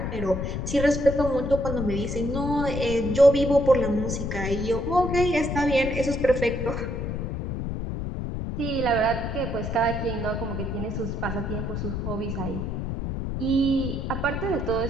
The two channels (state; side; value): noise; left; rumble, 3 dB below the sound